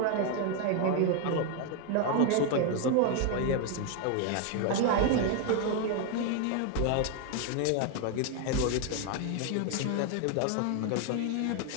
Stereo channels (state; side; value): different; both; correlation 0.01